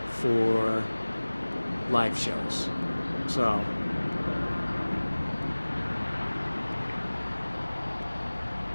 for live shows. So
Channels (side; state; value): both; inverted; correlation -1.00